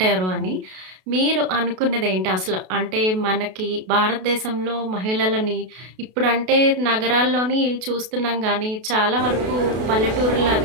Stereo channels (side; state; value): left; late; 32 ms